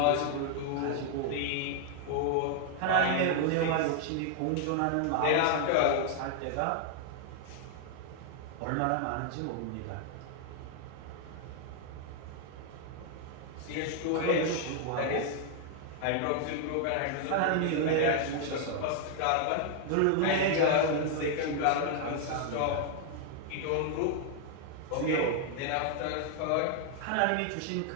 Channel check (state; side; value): different; both; correlation 0.00